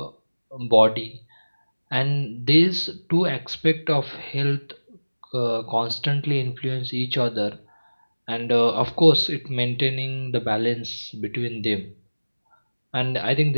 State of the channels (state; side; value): inverted; both; correlation -1.00